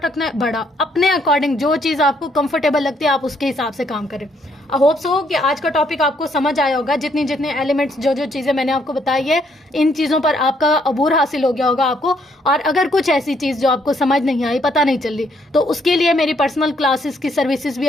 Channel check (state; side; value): normal; both; correlation 0.70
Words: रखना है बड़ा, अपने अकॉर्डिंग जो चीज़ आपको कंफर्टेबल लगती है आप उसके हिसाब से काम करें। आई होप सो कि आज का टॉपिक आपको समझ आया होगा। जितने एलिमेंट्स, जो चीज़ें मैंने आपको बताई है, इन चीज़ों पर आपका अबूर हासिल हो गया होगा आपको। और अगर कुछ ऐसी चीज़ जो आपको समझ नहीं आई, पता नहीं चल रही, तो उसके लिए मेरी पर्सनल क्लासेस की सर्विसेज भी